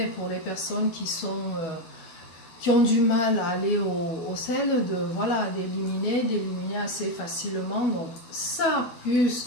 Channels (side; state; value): right; late; 12 ms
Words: pour les personnes qui ont du mal à aller au sel, d'éliminer assez facilement. Donc ça,